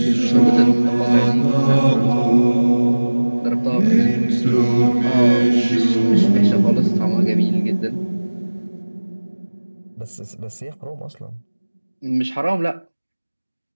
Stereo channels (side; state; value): both; inverted; correlation -1.00